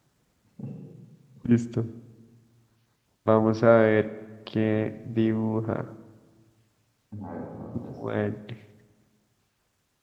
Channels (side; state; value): both; identical; correlation 1.00